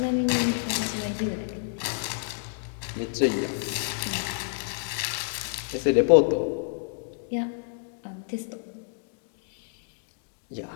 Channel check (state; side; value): silent; right; digital silence